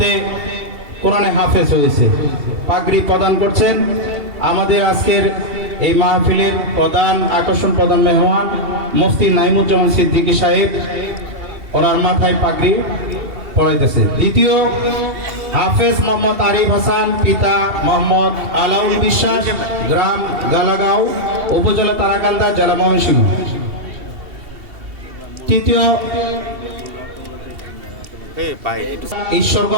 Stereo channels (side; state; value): left; late; 2.7 ms